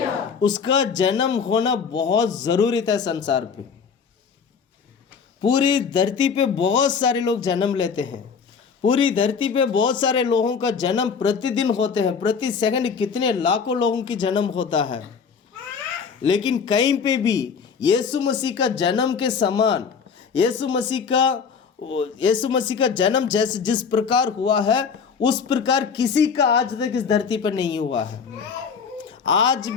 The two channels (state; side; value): quieter; right; 6.1 dB